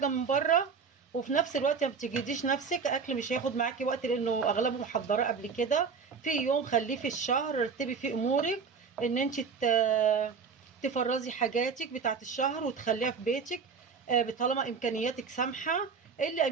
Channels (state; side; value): quieter; left; 5.6 dB